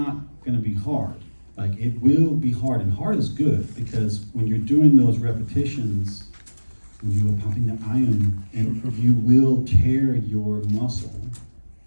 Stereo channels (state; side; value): inverted; both; correlation -1.00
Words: gonna be hard. Like, it will be hard, and hard is good, because when you're doing those repetitions, when you are pumping the iron, and you will tear your muscle,